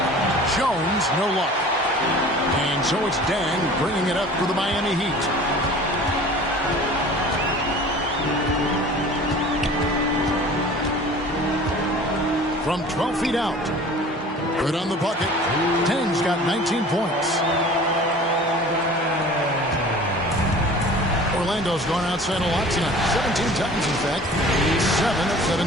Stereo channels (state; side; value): normal; both; correlation 0.44